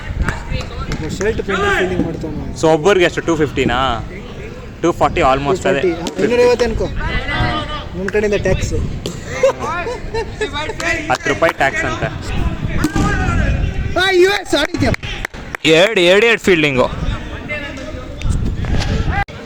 ಸೊ ಒಬ್ಬರಿಗೆ ಎಷ್ಟು 250ನಾ 240 ಆಲ್ಮೋಸ್ಟ್. ಅದೇ 250 ಅನ್ಕೋ. ನಿಮ್ಮ ಕಡೆಯಿಂದ ಟ್ಯಾಕ್ಸ್ 10 ರೂಪಾಯಿ ಟ್ಯಾಕ್ಸ್ ಅಂತ. ಎರಡು ಫೀಲ್ಡಿಂಗು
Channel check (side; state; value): both; identical; correlation 1.00